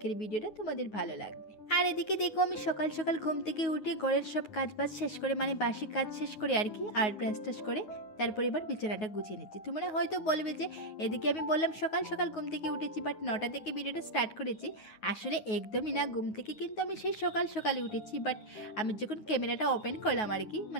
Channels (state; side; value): late; right; 9.4 ms